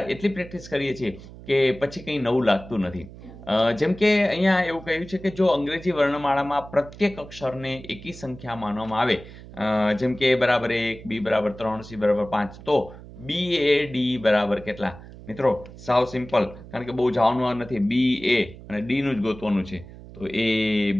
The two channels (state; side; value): noise; right; hum, 17 dB below the sound